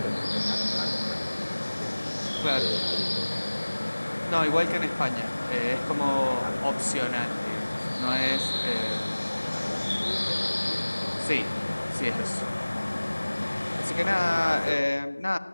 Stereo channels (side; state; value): both; inverted; correlation -1.00